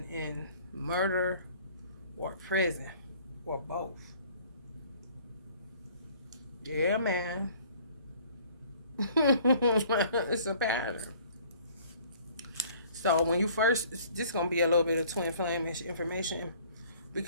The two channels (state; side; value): inverted; both; correlation -0.54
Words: in murder or prison or both. Yeah, man. It's a pattern. So when you first, this is going to be a little bit of twin flame information